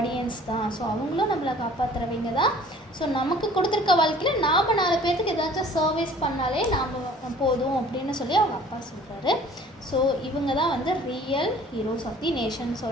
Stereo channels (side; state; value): both; normal; correlation 0.51